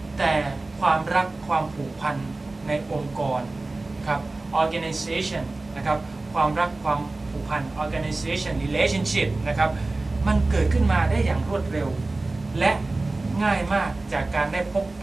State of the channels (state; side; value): quieter; left; 3.2 dB